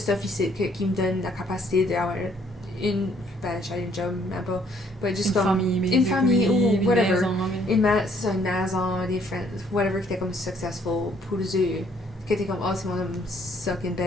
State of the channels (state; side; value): normal; both; correlation 0.65